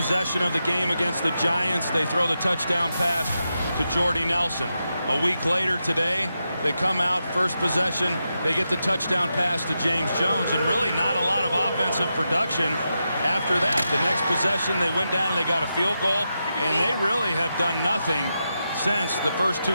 of the game against the Giants, they throw the touchdown pass to Jordy Nelson. A week later today, they come out, first possession, they get the touchdown pass to James Jones, and really not a lot of offensive production after that. The next possession, they went down and they got a field goal, and they really have done nothing since the first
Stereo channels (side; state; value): both; inverted; correlation -0.87